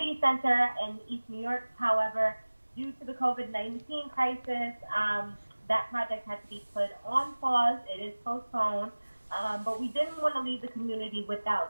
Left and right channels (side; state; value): both; inverted; correlation -1.00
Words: Center in East New York. However, due to the COVID-19 crisis, that project had to be put on pause. It is postponed. But we didn't want to leave the community